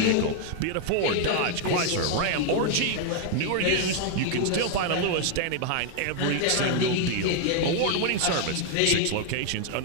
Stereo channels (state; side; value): different; both; correlation 0.00